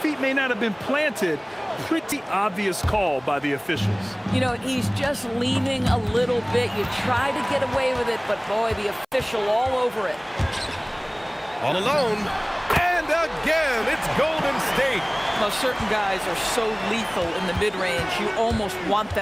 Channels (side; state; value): both; identical; correlation 1.00